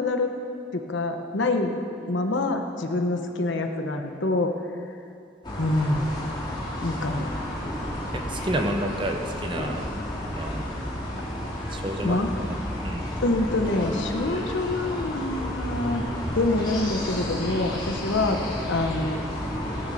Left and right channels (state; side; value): normal; both; correlation 0.48